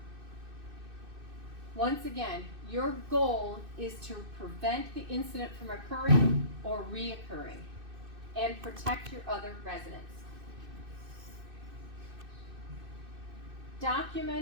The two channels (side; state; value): left; late; 2.6 ms